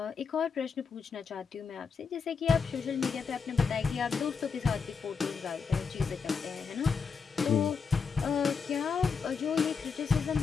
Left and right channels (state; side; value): quieter; right; 5.6 dB